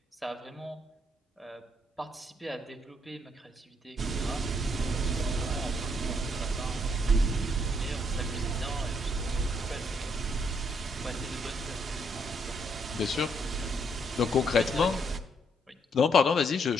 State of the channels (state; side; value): normal; both; correlation 0.72